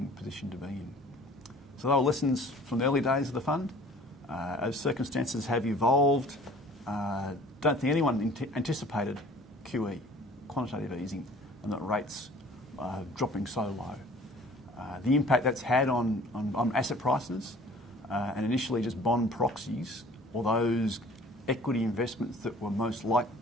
position to be in. So they were lessons from the early days of the fund. As circumstances have evolved, don't think anyone anticipated QE, quantitative easing, and that rates dropping so low. The impact that's had on asset prices and initially just bond proxies, or those equity investments that were most like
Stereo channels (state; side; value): normal; both; correlation 0.50